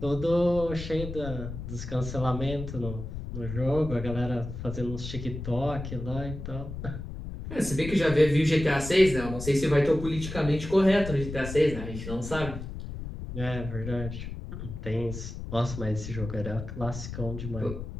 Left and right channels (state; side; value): noise; left; rumble, 8 dB below the sound